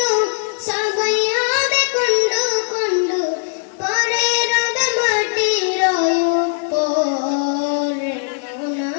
সবই হবে খণ্ড খণ্ড, পরে রবে মাটির উপর। মন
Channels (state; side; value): silent; right; digital silence